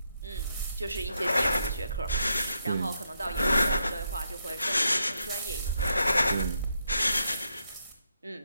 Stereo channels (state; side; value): inverted; both; correlation -0.80